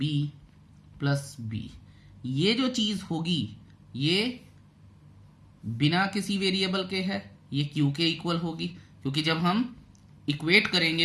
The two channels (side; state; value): both; identical; correlation 1.00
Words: plus B. ये जो चीज होगी ये बिना किसी वेरिएबल के है, ये क्यू के इक्वल होगी, क्योंकि जब हम इक्वेट